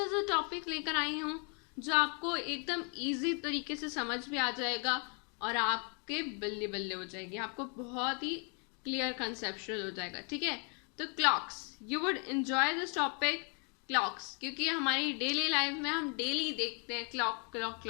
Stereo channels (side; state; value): right; quieter; 37.3 dB